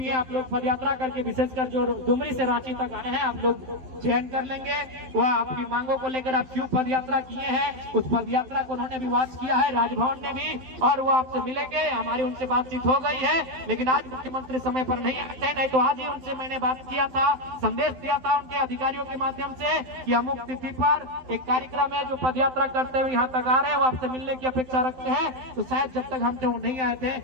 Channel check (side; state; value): left; late; 12 ms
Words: है, आप लोग पद यात्रा करके, विशेषकर जो डुमरी से रांची तक आए हैं, आप लोग चयन कर लेंगे। वह आपकी मांगों को लेकर आप क्यों पद यात्रा किए हैं, उस पद यात्रा को उन्होंने भी वॉच किया है, राजभवन ने भी, और वो आपसे मिलेंगे। हमारी उनसे बातचीत हो गई है, लेकिन आज मुख्यमंत्री समय पर नहीं आए थे, नहीं तो आज ही उनसे मैंने बात किया था, संदेश दिया था उनके अधिकारियों के माध्यम से कि अमुक तिथि पर एक कार्यक्रम है, जो पद यात्रा करते हुए यहाँ तक आ रहे हैं, वो आपसे मिलने की अपेक्षा रखते हैं। तो शायद जब तक हमसे वो नहीं आए थे,